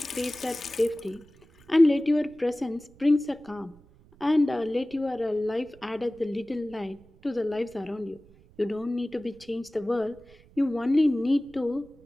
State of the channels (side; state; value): right; noise; rumble, 26 dB below the sound